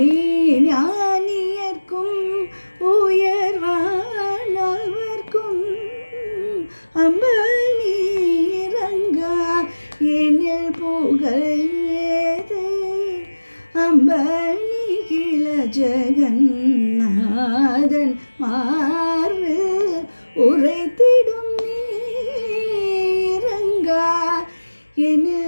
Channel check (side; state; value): both; inverted; correlation -1.00